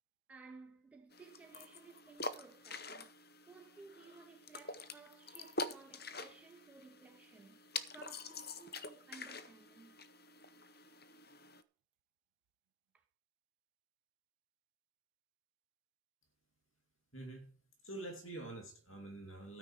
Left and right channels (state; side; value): normal; both; correlation -0.03